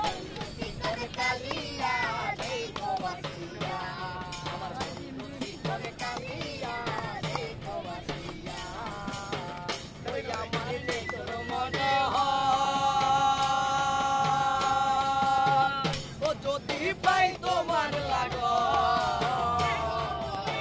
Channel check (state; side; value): identical; both; correlation 1.00